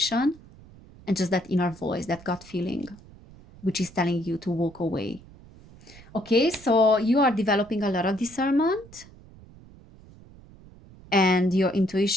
and just that inner voice, that gut feeling, which is telling you to walk away. Okay, so you are developing a lot of discernment, and your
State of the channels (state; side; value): noise; right; rumble, 22 dB below the sound